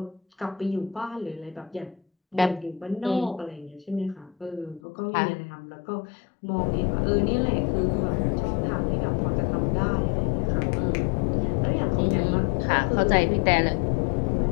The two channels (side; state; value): right; drops out; at 4.8 s